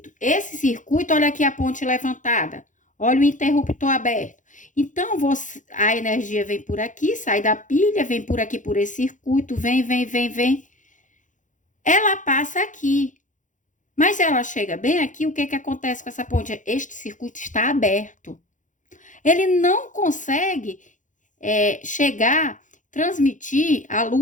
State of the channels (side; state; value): right; late; 0.37 ms